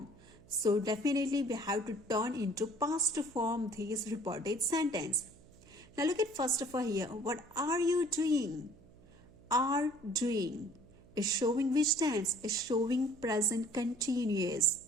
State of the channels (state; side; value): noise; right; hum, 24 dB below the sound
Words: So definitely we have to turn into past form this reported sentence. Now look at first of all here. What are you doing? Are doing is showing which tense? Is showing present continuous.